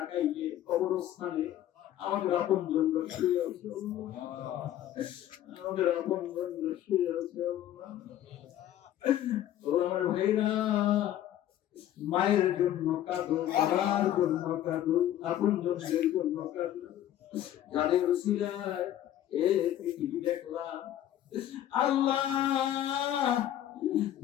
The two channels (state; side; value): quieter; right; 12.1 dB